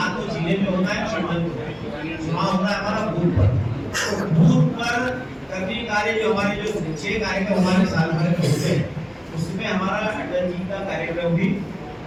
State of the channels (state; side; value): identical; both; correlation 1.00